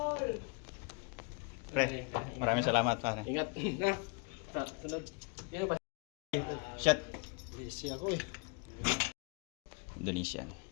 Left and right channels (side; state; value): right; quieter; 33.6 dB